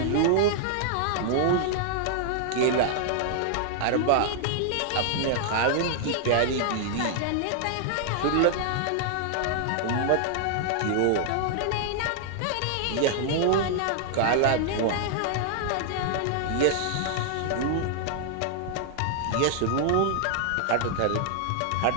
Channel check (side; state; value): both; different; correlation -0.01